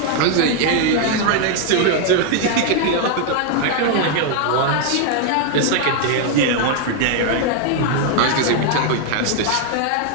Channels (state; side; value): different; both; correlation 0.00